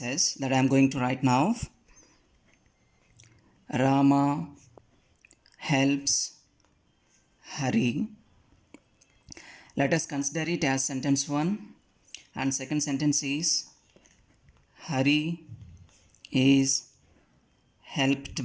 that I am going to write now. Rama helps Hari. Let us consider it as sentence 1, and second sentence is Hari is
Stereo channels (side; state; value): both; identical; correlation 1.00